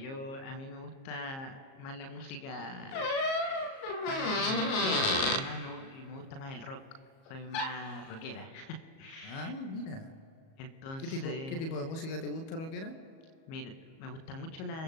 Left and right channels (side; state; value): right; late; 37 ms